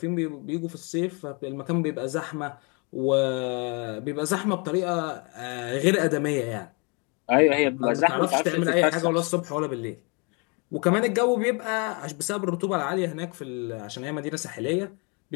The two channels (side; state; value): right; quieter; 32.8 dB